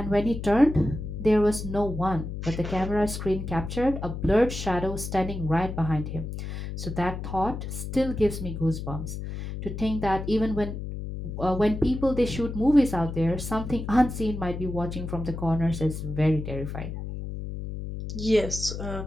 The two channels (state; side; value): noise; left; hum, 6 dB below the sound